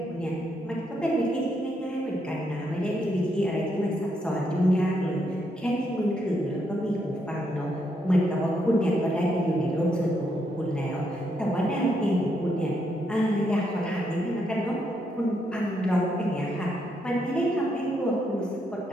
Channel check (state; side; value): normal; both; correlation 0.78